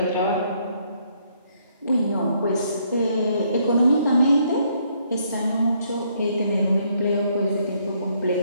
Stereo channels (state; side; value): inverted; both; correlation -0.70